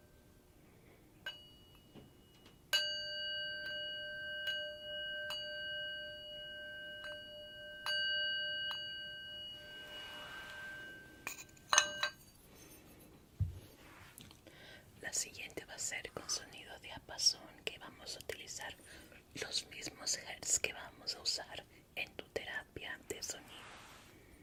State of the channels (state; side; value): identical; both; correlation 1.00